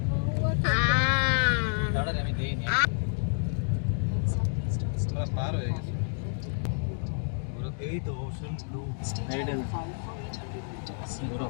দাঁড়া আমি দেইনি আমরা পার হয়ে গেছি এই তো ওশন ব্লু। পুরো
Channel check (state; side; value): silent; right; 57 dB below the other